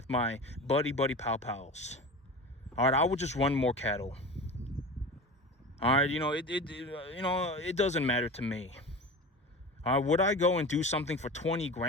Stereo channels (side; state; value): both; normal; correlation 0.32